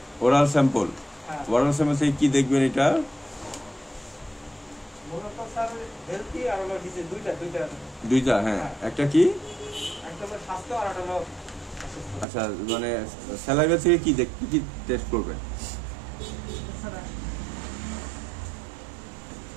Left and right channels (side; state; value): left; drops out; at 12.2 s